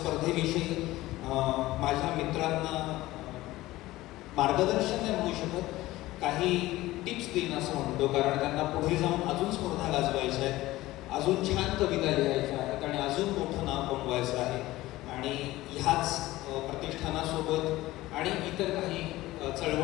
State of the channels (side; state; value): right; quieter; 17.4 dB